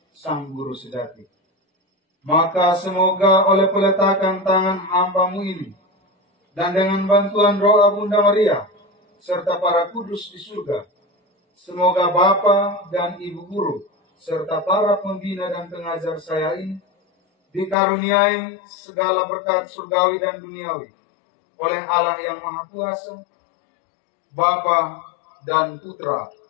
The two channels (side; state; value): right; drops out; at 17.8 s